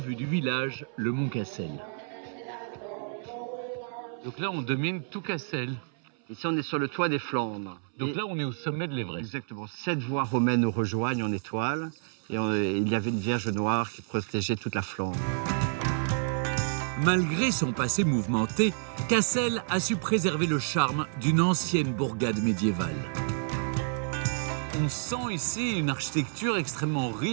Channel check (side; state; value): left; silent; 58 dB below the other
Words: du village, le mont Cassel. Donc là, on domine tout Cassel. Ici, on est sur le toit des Flandres. Donc là, on est au sommet de l'Everest. Exactement. 7 voies romaines nous rejoignent en étoile. Et il y avait une Vierge noire qui protégeait toute la Flandre. Malgré son passé mouvementé, Cassel a su préserver le charme d'une ancienne bourgade médiévale. On sent ici une architecture extrêmement